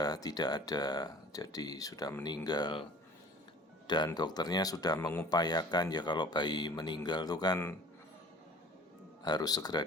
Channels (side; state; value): both; normal; correlation 0.47